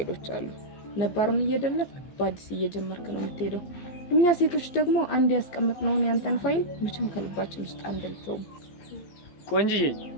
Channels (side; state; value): right; late; 15 ms